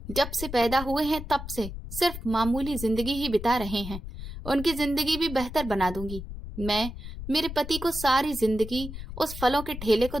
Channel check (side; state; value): left; noise; rumble, 10 dB below the sound